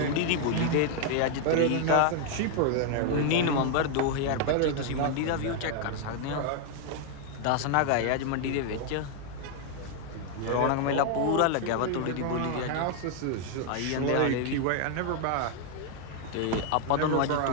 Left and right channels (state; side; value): different; both; correlation 0.00